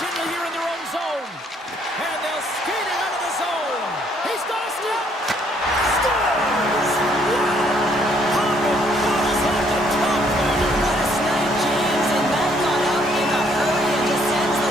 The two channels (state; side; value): normal; both; correlation 0.67